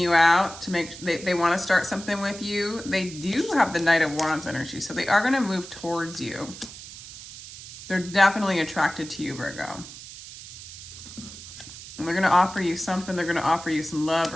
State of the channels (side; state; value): right; noise; hiss, 14 dB below the sound